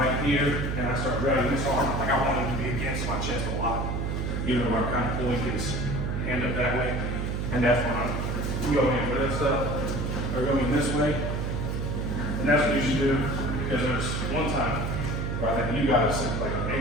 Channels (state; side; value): noise; right; hum, 1 dB below the sound